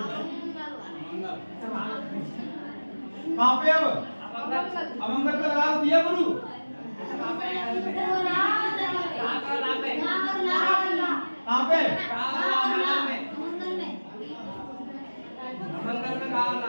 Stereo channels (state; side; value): inverted; both; correlation -1.00